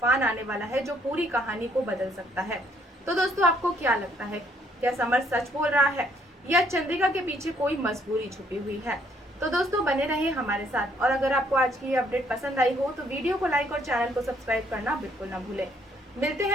आने वाला है जो पूरी कहानी को बदल सकता है। तो दोस्तों, आपको क्या लगता है? क्या समर सच बोल रहा है या चंद्रिका के पीछे कोई मजबूरी छुपी हुई है? तो दोस्तों, बने रहिए हमारे साथ और अगर आपको आज की ये अपडेट पसंद आई हो तो वीडियो को लाइक और चैनल को सब्सक्राइब करना बिल्कुल ना भूलें। मिलते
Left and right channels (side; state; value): both; normal; correlation 0.67